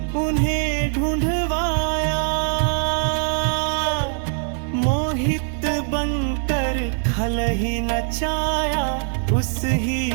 उन्हें ढूंढवाया। मोहित बनकर खल ही नचाया, उस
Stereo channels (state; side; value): silent; left; 64 dB below the other